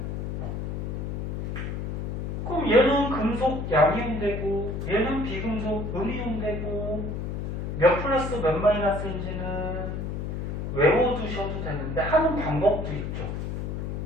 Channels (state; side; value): noise; left; hum, 3 dB below the sound